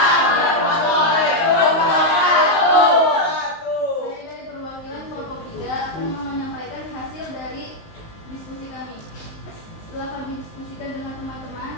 warahmatullahi wabarakatuh. Saya dari perwakilan kelompok 3 akan menyampaikan hasil dari diskusi kami. Setelah kami diskusikan dengan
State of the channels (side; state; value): right; late; 19 ms